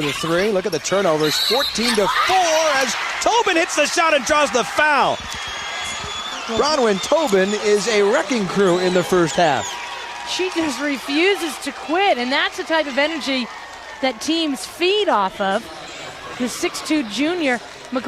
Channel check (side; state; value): both; identical; correlation 1.00